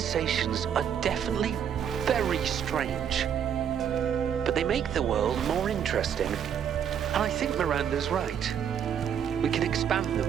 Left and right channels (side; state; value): left; quieter; 8.5 dB